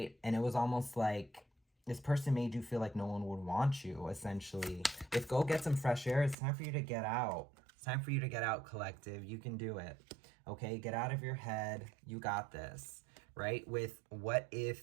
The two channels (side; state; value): left; drops out; at 6.4 s